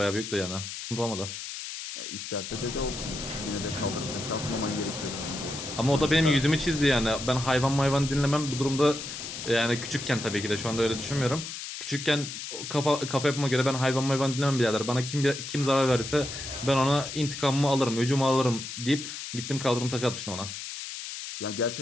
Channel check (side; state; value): left; noise; hiss, 8 dB below the sound